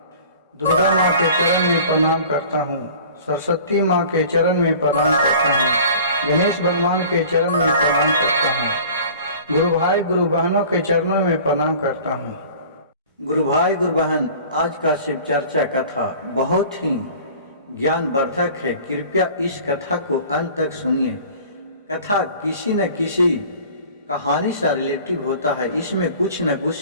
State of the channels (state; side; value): inverted; both; correlation -0.45